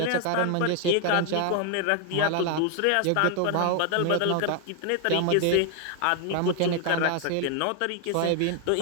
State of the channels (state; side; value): different; both; correlation 0.00